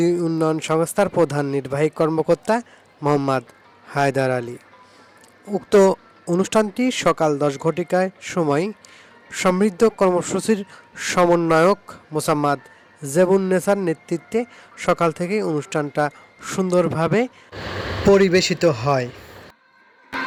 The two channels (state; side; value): identical; both; correlation 1.00